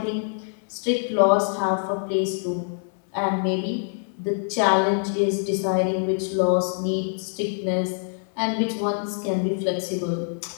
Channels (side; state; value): right; silent; digital silence